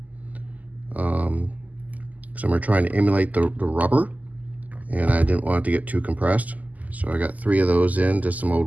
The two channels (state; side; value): late; left; 0.078 ms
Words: because I'm trying to emulate the rubber, and I didn't want it to get too compressed. So I got 3 of those in, just some old